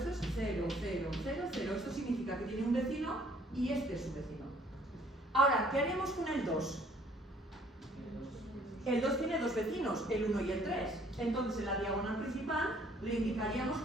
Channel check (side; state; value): both; normal; correlation 0.60